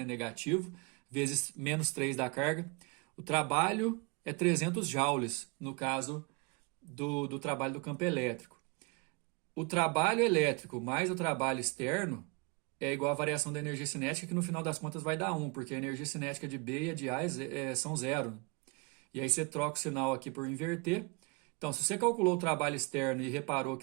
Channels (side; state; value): left; quieter; 29.0 dB